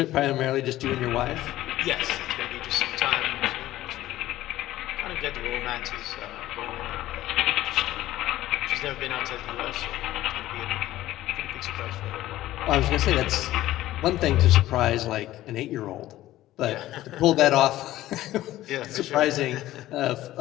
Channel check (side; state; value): right; quieter; 15.1 dB